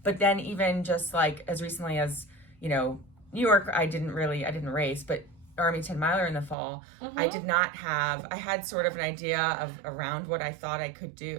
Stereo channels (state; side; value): drops out; left; at 6.6 s